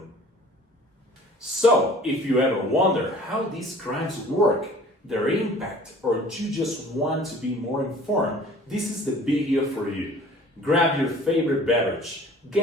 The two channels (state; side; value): normal; both; correlation 0.48